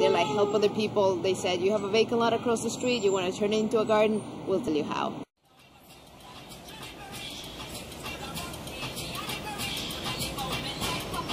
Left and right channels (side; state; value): both; identical; correlation 1.00